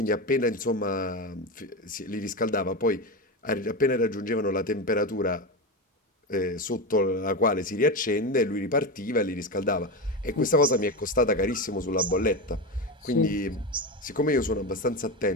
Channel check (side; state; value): both; normal; correlation 0.18